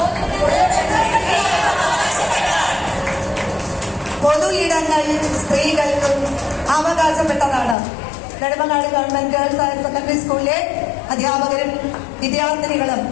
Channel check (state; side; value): drops out; right; at 7.8 s